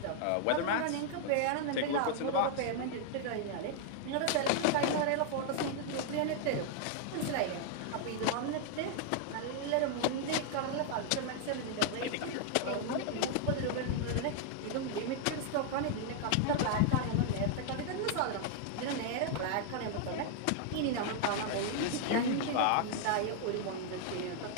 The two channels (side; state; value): both; different; correlation 0.00